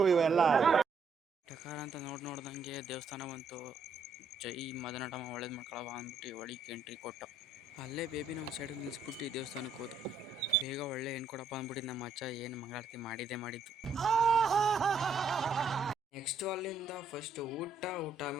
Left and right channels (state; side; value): quieter; left; 3.6 dB